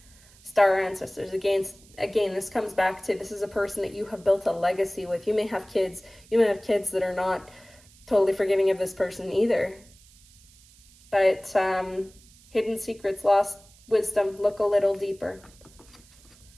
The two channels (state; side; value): noise; right; hiss, 26 dB below the sound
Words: Star ancestors, again, this comes back to, this is a person that you have built a legacy with. You may have kids that are not totally forgiving of this person either. But hidden secrets, lost wisdom, look a little deeper.